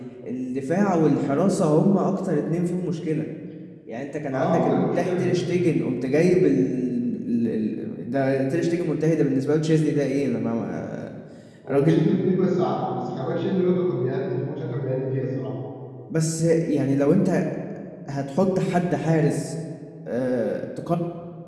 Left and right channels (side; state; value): both; identical; correlation 1.00